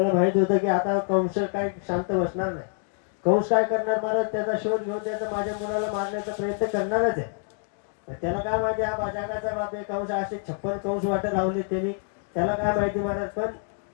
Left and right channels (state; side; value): silent; right; 57 dB below the other